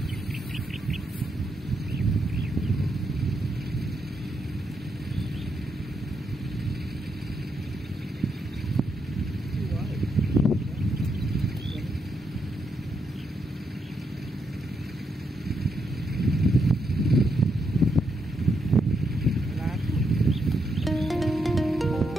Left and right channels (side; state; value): both; normal; correlation 0.80